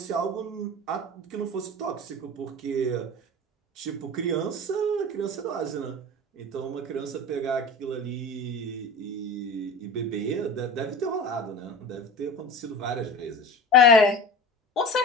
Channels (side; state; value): both; normal; correlation 0.32